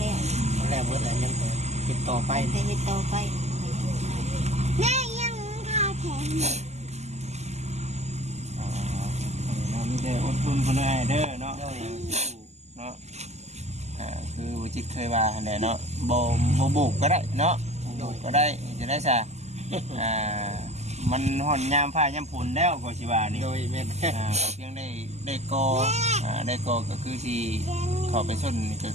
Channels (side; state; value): left; late; 0.33 ms